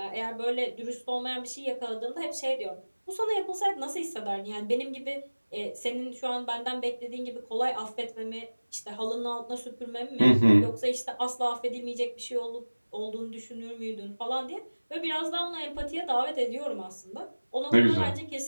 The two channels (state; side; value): inverted; both; correlation -1.00